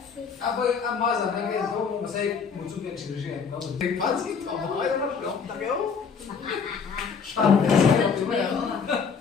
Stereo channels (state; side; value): quieter; right; 6.0 dB